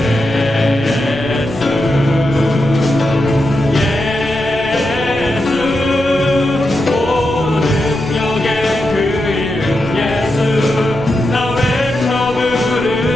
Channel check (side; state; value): left; noise; rumble, 16 dB below the sound